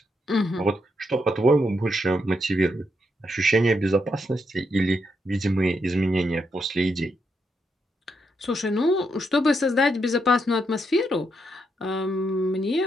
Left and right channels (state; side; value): normal; both; correlation 0.80